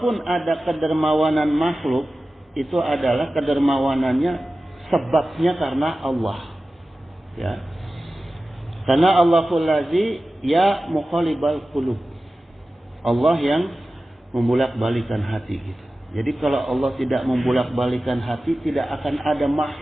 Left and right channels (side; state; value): both; normal; correlation 0.95